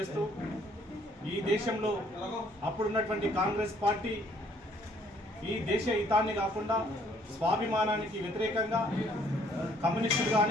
ఈ దేశంలో అప్పుడున్నటువంటి కాంగ్రెస్ పార్టీ ఈ దేశ హితాన్ని కాకుండా స్వాభిమానానికి వ్యతిరేకంగా కమ్యూనిస్టులు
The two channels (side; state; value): both; normal; correlation 0.63